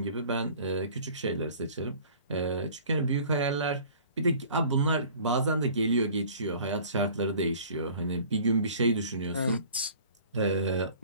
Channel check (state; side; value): inverted; both; correlation -0.48